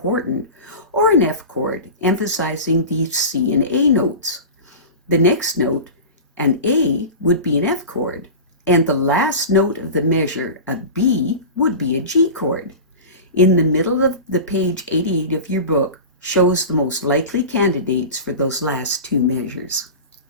or an F chord, emphasizing the C and A notes. The next note, an A, would be an F chord, and the last note of the measure, a B, would be a G chord. In the middle of the page 88 of your book shows the most likely candidates for those last 2 measures.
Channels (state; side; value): inverted; both; correlation -0.30